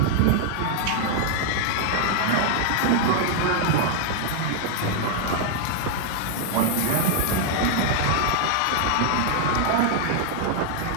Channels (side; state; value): both; different; correlation 0.00